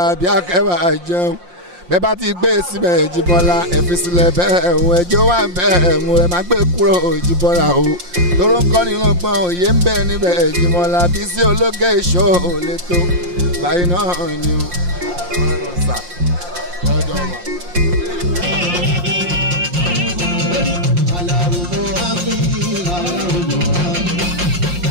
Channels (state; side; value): late; left; 5.7 ms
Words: Akẹ́wà jẹun bẹ́ẹ̀ bá ti gbé síbẹ̀ Jíbọ́lá ẹ fi sílẹ̀ bẹ́ẹ̀ ẹ̀hún ẹjọ́ wà bẹ́ẹ̀ mú ẹ má gbé kúrò Jíbọ́lá o tóró ń kọ́ nínú pọ́n òye ń bẹ níbẹ̀ Jíbọ́lá Bísí Olókè Show lè tó báyìí náà ni o.